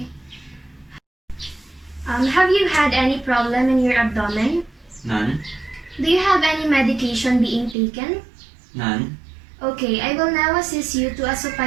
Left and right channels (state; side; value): drops out; left; at 7.8 s